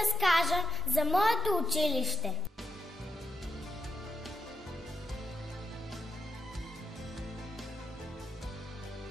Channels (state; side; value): normal; both; correlation 0.83